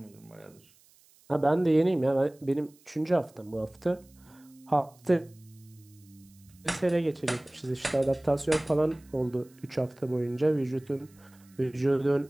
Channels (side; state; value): right; noise; hiss, 29 dB below the sound